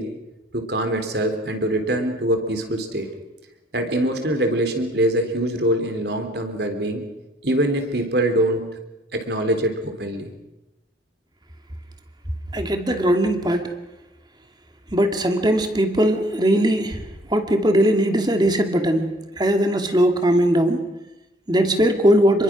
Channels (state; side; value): normal; both; correlation 0.60